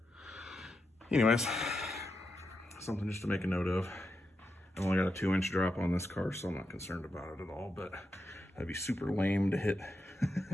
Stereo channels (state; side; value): normal; both; correlation 0.86